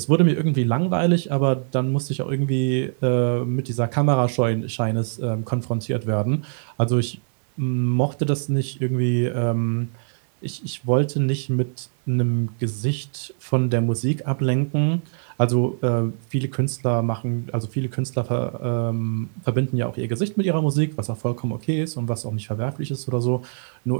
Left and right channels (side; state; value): left; silent; digital silence